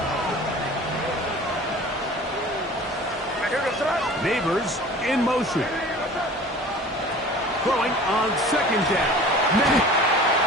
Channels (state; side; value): normal; both; correlation 0.43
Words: Neighbors in motion. Throwing on 2nd down. May.